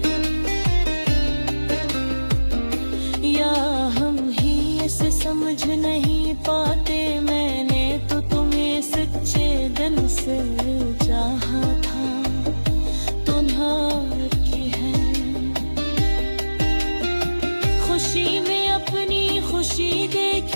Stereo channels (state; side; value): inverted; both; correlation -1.00